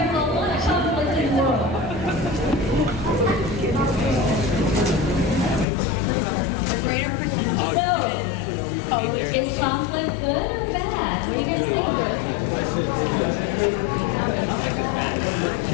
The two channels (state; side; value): drops out; right; at 5.7 s